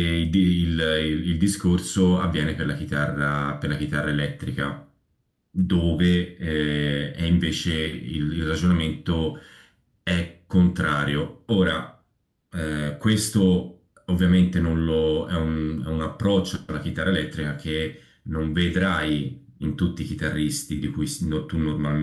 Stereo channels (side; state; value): both; identical; correlation 1.00